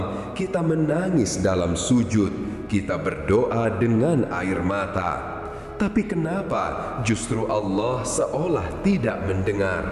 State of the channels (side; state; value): both; identical; correlation 1.00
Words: kita menangis dalam sujud, kita berdoa dengan air mata. Tapi kenapa justru Allah seolah tidak